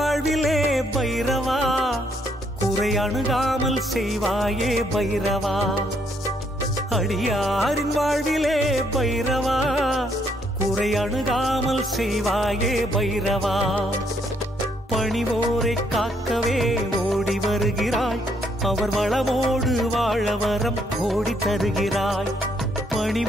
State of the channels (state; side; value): normal; both; correlation 0.71